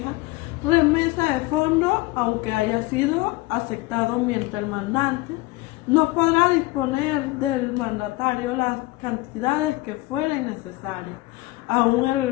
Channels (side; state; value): right; quieter; 20.5 dB